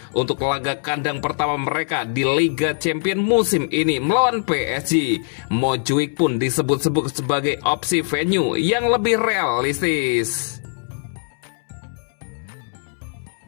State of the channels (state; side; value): silent; right; 65 dB below the other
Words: untuk laga kandang pertama mereka di Liga Champions musim ini melawan PSG. Montjuic pun disebut-sebut sebagai opsi venue yang lebih realistis.